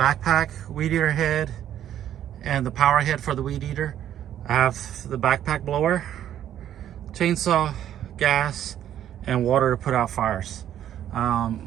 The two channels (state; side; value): quieter; left; 10.9 dB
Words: weed eater head, and the power head for the weed eater. I have the backpack blower, chainsaw, gas, and water to put out fires.